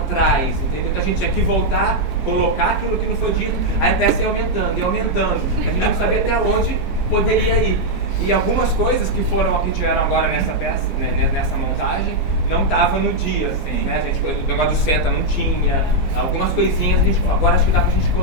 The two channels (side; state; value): both; normal; correlation -0.02